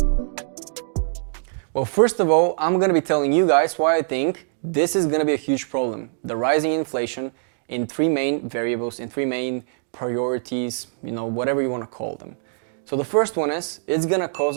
Well, first of all, I'm going to be telling you guys why I think this is going to be a huge problem. The rising inflation in three main variables, in three main priorities, whatever you want to call them. So the first one is, it's going to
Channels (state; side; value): silent; left; digital silence